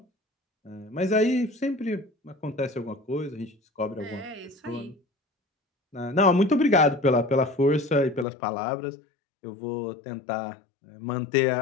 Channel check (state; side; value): drops out; right; at 8.2 s